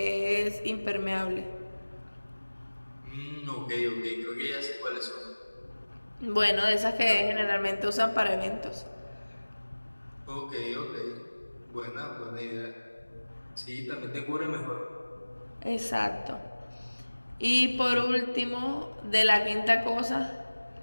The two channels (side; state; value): both; inverted; correlation -1.00